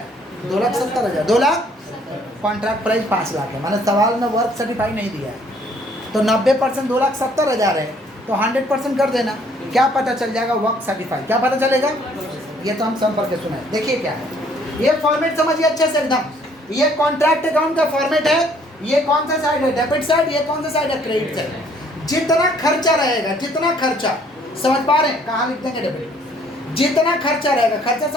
2,70,000। 2 लाख, कॉन्ट्रैक्ट प्राइस 5 लाख है, मैंने सवाल में वर्क सर्टिफाइड नहीं दिया है तो 90% 2,70,000 है तो 100% कर देना। क्या पता चल जाएगा वर्क सर्टिफाइड, क्या पता चलेगा? ये तो हम संपर्क के सुनाए। देखिए क्या है, ये फॉर्मेट समझिए अच्छे से एकदम। ये कॉन्ट्रैक्ट अकाउंट का फॉर्मेट है। ये कौन सा साइड है, डेबिट साइड, ये कौन सा साइड है, क्रेडिट साइड। जितना खर्चा रहेगा, जितना खर्चा, समझ पा रहे हैं? कहाँ लिख देंगे डेबिट, जितना खर्चा रहेगा, खर्चा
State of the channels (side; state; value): both; normal; correlation 0.62